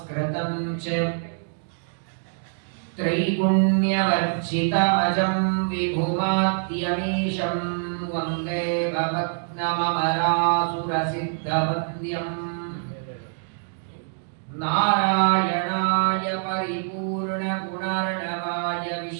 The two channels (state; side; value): silent; left; digital silence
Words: च त्रैगुण्यवर्जितमजं विभुमाद्यमीशं वन्दे भवत्नममरासुरसिद्धवन्द्यम् नारायणाय परिपूर्णगुणर्णवाय